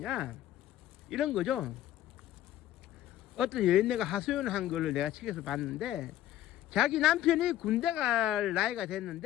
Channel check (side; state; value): right; quieter; 13.0 dB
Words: 이런 거죠. 어떤 여인네가 하소연을 한 거를 내가 책에서 봤는데, 자기 남편이 군대 갈 나이가